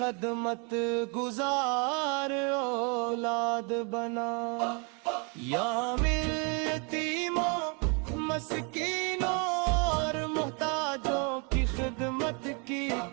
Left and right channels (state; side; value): quieter; left; 34.3 dB